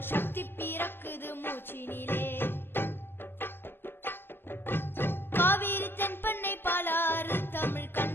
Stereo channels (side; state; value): right; late; 0.10 ms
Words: சக்தி பிறக்குது மூச்சினிலே. காவிரி தென்பண்ணை பாலாறு தமிழ்